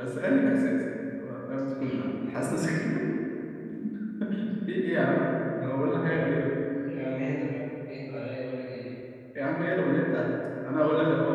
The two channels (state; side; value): identical; both; correlation 1.00